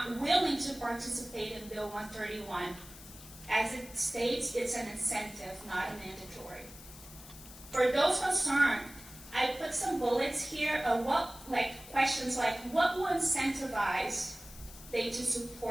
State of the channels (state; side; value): noise; left; hiss, 17 dB below the sound